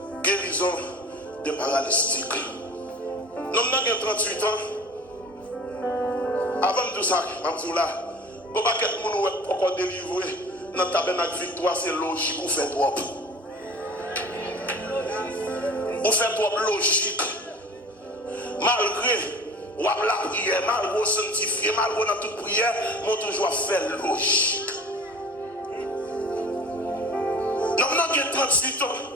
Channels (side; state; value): both; normal; correlation 0.42